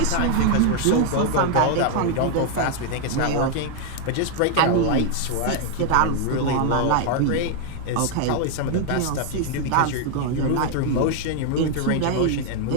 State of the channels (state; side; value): different; both; correlation 0.00